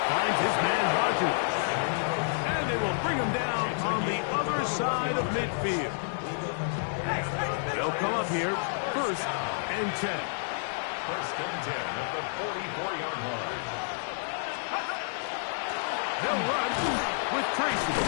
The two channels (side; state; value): right; silent; digital silence